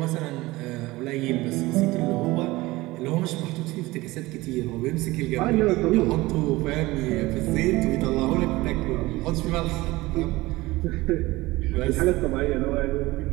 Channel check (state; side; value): quieter; left; 19.9 dB